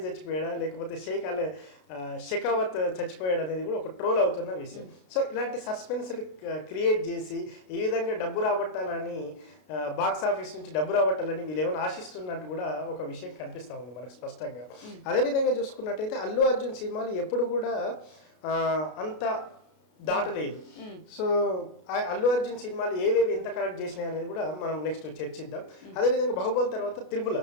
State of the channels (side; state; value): right; late; 33 ms